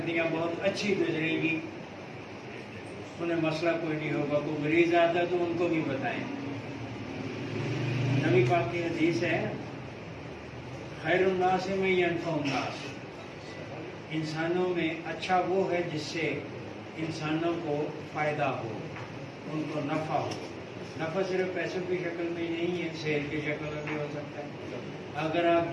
बहुत अच्छी गुजरेगी, उन्हें मसला कोई नहीं होगा। कोई मरीज आता है तो उनको भी बताएं। नबी पाक की हदीस है, खैरुन्नास में यनफउन्नास, इंसानों में अच्छा वो है जिससे इंसानों को फ़ायदा हो, उनको नफ़ा हो। नफ़ा सिर्फ पैसों की शक्ल में नहीं है, सेहत की शक्ल में भी हो सकता है। अगर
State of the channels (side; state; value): both; identical; correlation 1.00